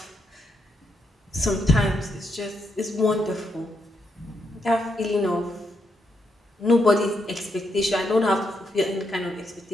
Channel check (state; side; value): normal; both; correlation 0.80